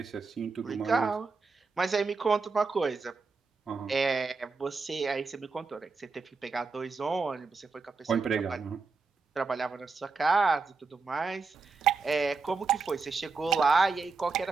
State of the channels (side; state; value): left; quieter; 4.4 dB